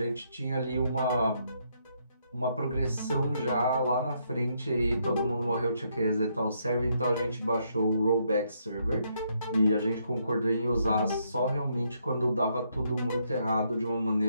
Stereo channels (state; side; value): inverted; both; correlation -0.74